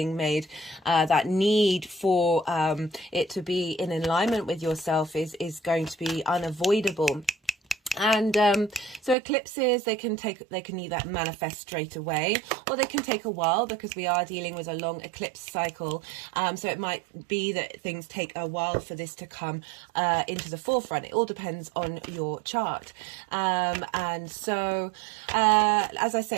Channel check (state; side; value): drops out; left; at 9.2 s